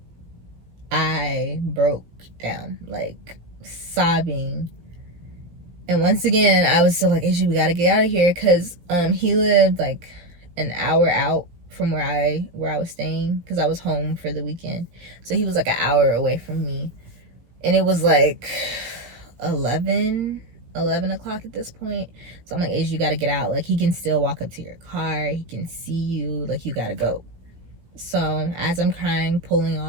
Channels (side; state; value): left; late; 17 ms